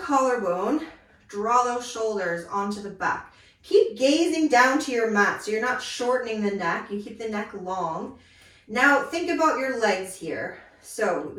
collarbone, draw those shoulders onto the back. Keep gazing down to your mat so you're not shortening the neck, you keep the neck long. Now think about your legs here. So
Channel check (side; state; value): both; identical; correlation 1.00